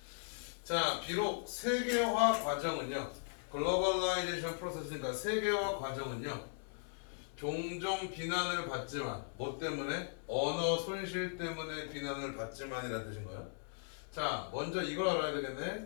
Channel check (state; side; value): silent; right; 52 dB below the other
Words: 자, 비록 세계화 과정은요, 글로벌라이제이션 프로세스니까 세계화 과정은요, 종종 비난을 받지만, 뭐 때문에? 언어 손실 때문에 비난을 받지만이라는 뜻인 거야. 자, 먼저 이걸 알아야